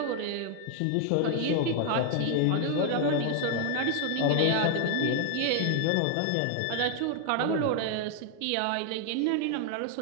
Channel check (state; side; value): different; both; correlation 0.00